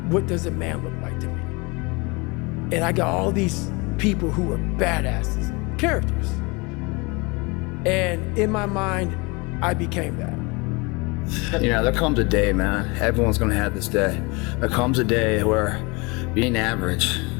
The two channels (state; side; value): quieter; right; 27.4 dB